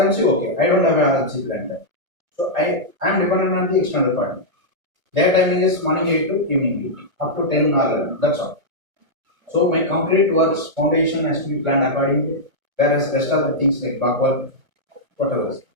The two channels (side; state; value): left; late; 1.2 ms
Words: okay. I don't have an RMC plan there. So I am dependent on the external partner. Their timing is morning 8 to evening 8, up to 10 or 11. That's all. So my concrete works foundation has to be planned accordingly. Whereas rest of the things like back work, whatever.